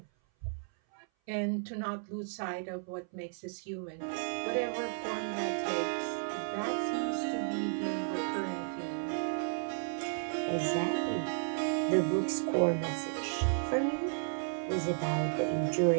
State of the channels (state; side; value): silent; left; 55 dB below the other